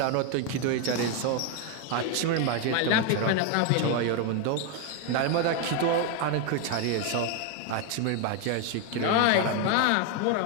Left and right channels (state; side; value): different; both; correlation 0.01